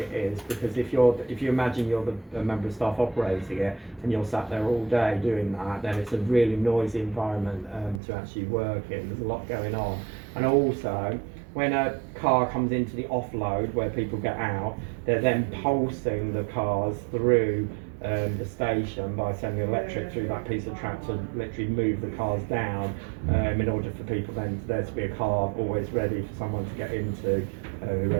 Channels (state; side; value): drops out; left; at 8.0 s